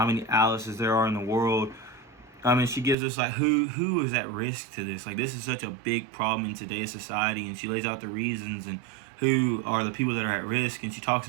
many Alices there are in the world. She gives us like who is at risk to this. Like, this is such a big problem in today's society, and she lays out the reasons and who are the people that are at risk. And she talks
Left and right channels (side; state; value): left; drops out; at 3.0 s